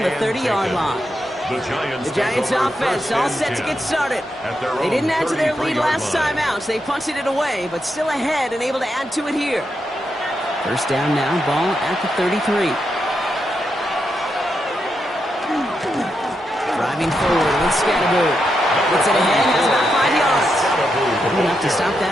the 30-yard line. The Giants offense all set to get started. They didn't add to their lead last time out, so they punted it away, but still ahead and able to add to it here. First down now, ball at the 33. Driving forward with Scatterboo. Gets it ahead, has about 5 yards. Good enough to stop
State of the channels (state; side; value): normal; both; correlation 0.84